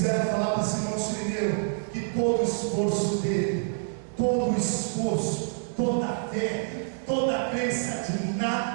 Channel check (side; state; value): left; silent; digital silence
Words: falar para Simão Sirineu que todo o esforço dele, todo o esforço, toda a fé, toda a crença de